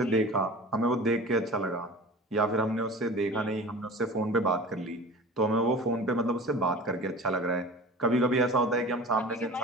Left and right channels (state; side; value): normal; both; correlation 0.38